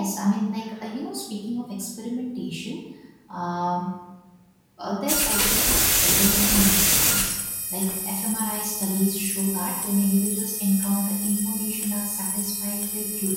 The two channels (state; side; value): identical; both; correlation 1.00